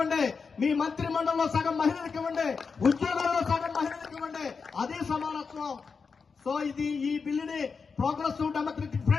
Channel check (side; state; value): right; quieter; 5.2 dB